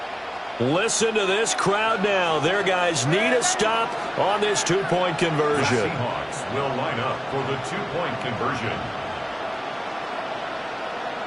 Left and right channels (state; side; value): identical; both; correlation 1.00